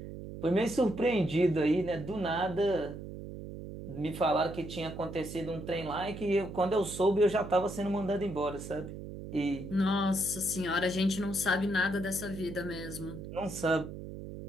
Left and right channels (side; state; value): right; noise; hum, 10 dB below the sound